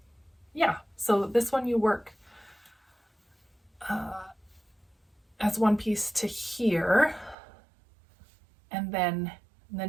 Yeah, so this one you work as one piece to here, and then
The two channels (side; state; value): left; drops out; at 7.4 s